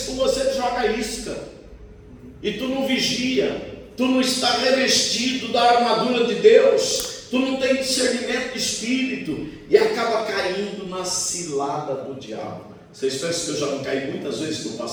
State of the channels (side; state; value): both; identical; correlation 1.00